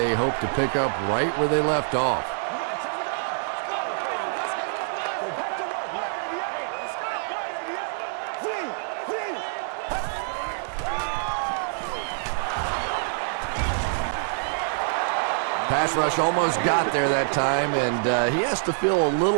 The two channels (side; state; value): left; silent; digital silence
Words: hope to pick up right where they left off. Pass rush almost got there that time, and he has to feel a